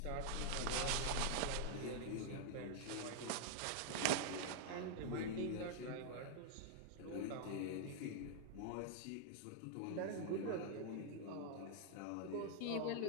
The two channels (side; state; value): both; different; correlation -0.01